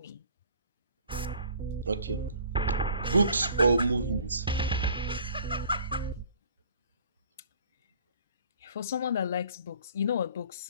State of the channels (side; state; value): both; inverted; correlation -0.52